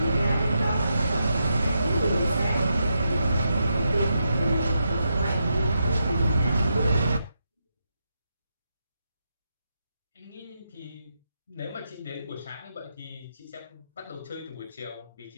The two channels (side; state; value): both; inverted; correlation -0.84